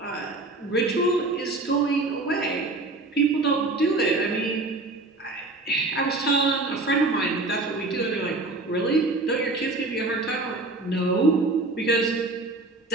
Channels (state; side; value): quieter; left; 3.1 dB